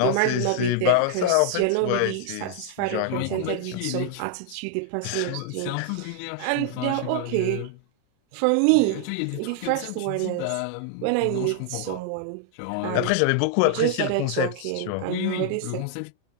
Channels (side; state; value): both; different; correlation 0.00